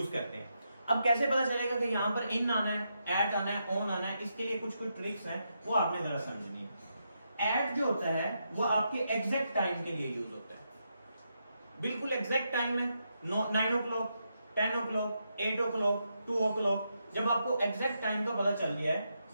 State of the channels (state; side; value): inverted; both; correlation -0.83